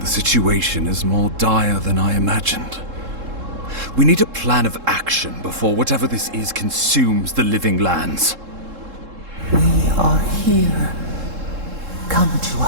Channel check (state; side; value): late; left; 3.7 ms